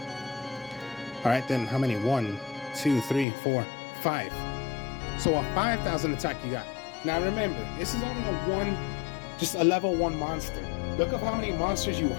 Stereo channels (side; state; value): right; drops out; at 3.2 s